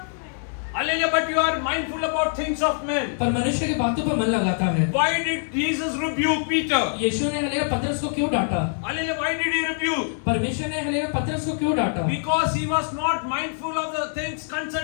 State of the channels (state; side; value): silent; right; digital silence